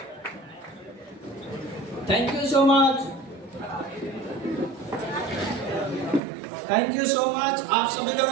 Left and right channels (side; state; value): left; drops out; at 6.2 s